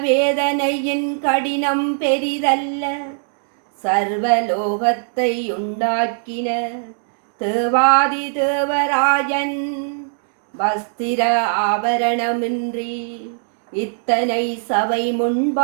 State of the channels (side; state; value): left; silent; digital silence